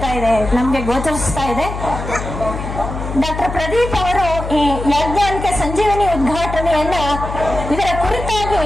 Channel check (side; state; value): left; noise; hum, 7 dB below the sound